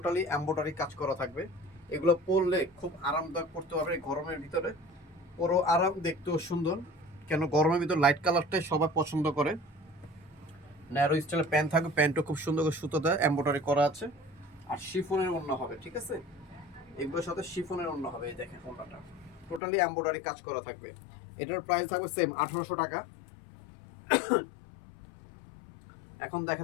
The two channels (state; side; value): drops out; right; at 19.6 s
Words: এমব্রয়ডারি কাজ করা থাকবে, এগুলো পরলে খুব আরামদায়ক পড়তে পারবে গরমের ভিতরে, পুরো আরাম, দেখতেও সুন্দর। কেন গরমের ভিতর লাইট কালারটাই সবাই পছন্দ করে। ন্যারো স্টাইলের প্যান্ট থাকবে, প্যান্টও খুব সুন্দর করে সুতো দেয়, এমব্রয়ডারি করা আছে, আর শিফনের ওড়না হবে, ঠিক আছে? এগুলোর সাথে শিফনের ওড়না হবে। এই দেখেন ওড়নাটা টোটালি এমব্রয়ডারি কাজ করা থাকবে। এটার প্রাইস থাকবে সেম 1800 টাকা। এখন দেখা